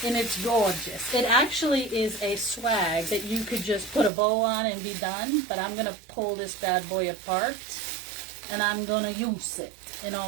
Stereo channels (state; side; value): drops out; left; at 4.1 s